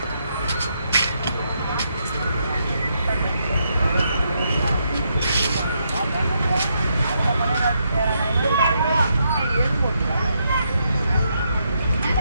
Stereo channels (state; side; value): inverted; both; correlation -0.79